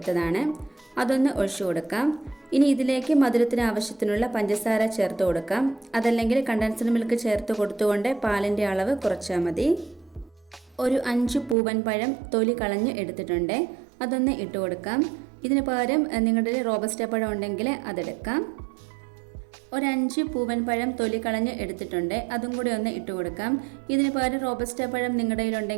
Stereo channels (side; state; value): left; drops out; at 11.6 s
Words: അതൊന്ന് ഒഴിച്ചു കൊടുക്കാം. ഇനി ഇതിലേക്ക് മധുരത്തിന് ആവശ്യത്തിനുള്ള പഞ്ചസാര ചേർത്ത് കൊടുക്കാം. അതല്ലെങ്കിൽ കണ്ടൻസ്ഡ് മിൽക്ക് ചേർത്ത് കൊടുത്തുകൊണ്ട് പാലിൻ്റെ അളവ് കുറച്ചാൽ മതി. ഒരു 5 പൂവൻ പഴം തൊലി കളഞ്ഞ് എടുത്തിട്ടുണ്ട്. അതൊന്ന് ഇട്ട് കൊടുക്കാം. ഇതിന് പകരം നിങ്ങളുടെ റോബസ്റ്റ പഴം ഉണ്ടെങ്കിൽ അതെടുക്കാം. ഒരു 5 പൂവൻ പഴം തൊലി കളഞ്ഞ് എടുത്തിട്ടുണ്ട്. അതും കൂടി ഒന്ന് ഇട്ട് കൊടുക്കാം. ഇതിന് പകരം റോബസ്റ്റ പഴം നിങ്ങളുടെ